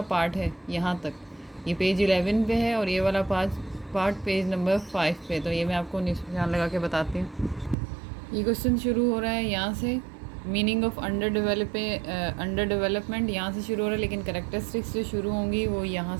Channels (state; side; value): drops out; left; at 7.8 s